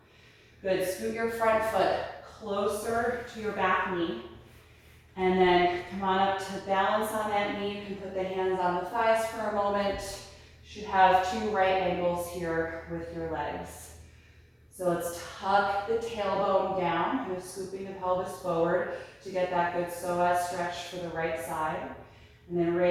Good, scoot your front foot closer to your back knee. And then come on up to balance on that knee. You can put the hands on the thighs for a moment. You should have two right angles here with your legs. So let's tuck the tailbone down, kind of scooping the pelvis forward to get that good psoas stretch for the right side. And then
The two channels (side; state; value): both; identical; correlation 1.00